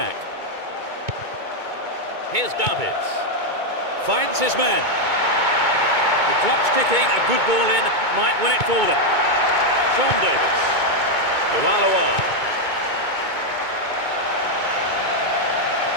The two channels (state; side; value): late; left; 2.2 ms